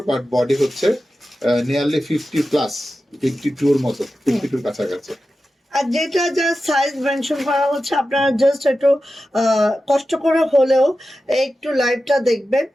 বাট বডি হচ্ছে নিয়ারলি 50 প্লাস, 52 এর মতো, 52 কাছাকাছি। আর যেটা যা সাইজ মেনশন করা হচ্ছে আপনারা জাস্ট একটু কষ্ট করে হলেও একটু লাইভটা দেখবেন,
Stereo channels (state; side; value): normal; both; correlation 0.92